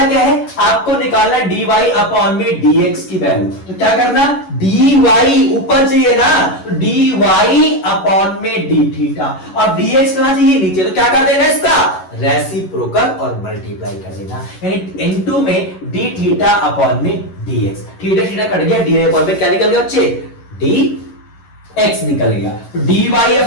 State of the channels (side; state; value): right; late; 11 ms